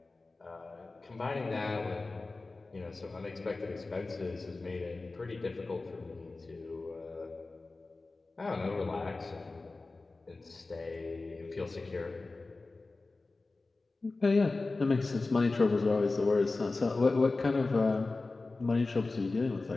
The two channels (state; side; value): quieter; right; 3.5 dB